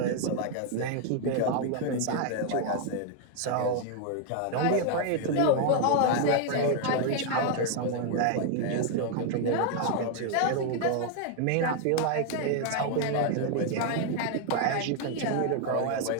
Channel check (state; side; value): different; both; correlation 0.00